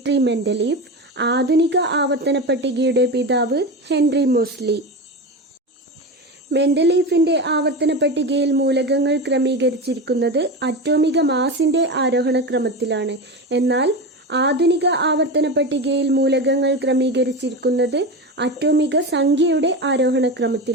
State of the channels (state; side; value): normal; both; correlation 0.23